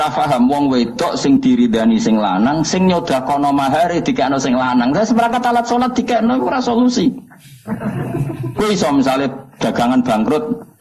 paham wong wedok sing diridani sing lanang sing nyodakono mahare dikekno sing lanang. Terus seperangkat alat salat dikekno iku ora solusi. Kowe iso misale dagangan bangkrut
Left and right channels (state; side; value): identical; both; correlation 1.00